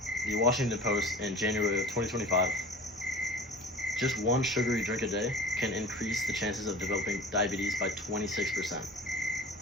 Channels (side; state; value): both; normal; correlation 0.40